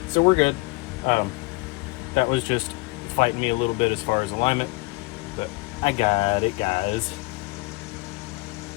so we're good. That was just fighting me a little bit as far as alignment, but I got it, guys.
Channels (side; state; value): right; quieter; 25.3 dB